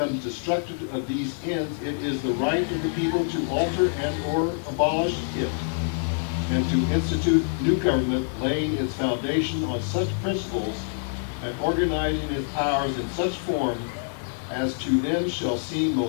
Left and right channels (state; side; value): silent; right; digital silence